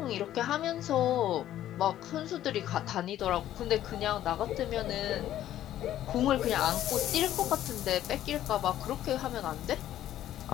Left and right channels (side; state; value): right; quieter; 12.5 dB